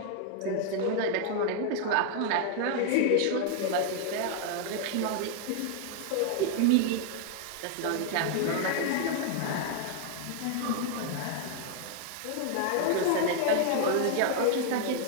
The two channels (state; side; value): different; both; correlation 0.00